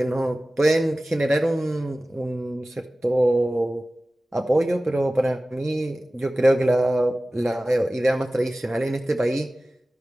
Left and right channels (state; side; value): normal; both; correlation 0.96